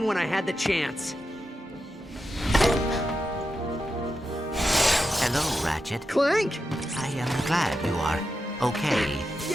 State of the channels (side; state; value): both; normal; correlation 0.88